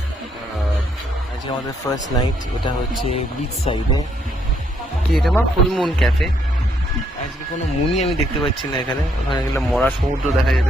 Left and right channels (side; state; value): both; normal; correlation 0.72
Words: আজকে আমাদের ফার্স্ট নাইট, এটা হচ্ছে বিচ সাইডে। কি এটা মা? Full moon cafe. আজকে কোনো মুনই আমি দেখতে পাচ্ছি না এখানে, ওখানে গেলে মরা সমুদ্র দেখা